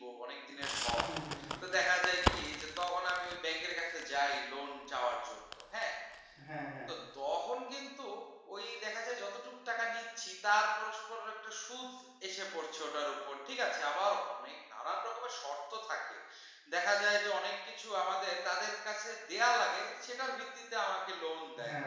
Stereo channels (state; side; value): identical; both; correlation 1.00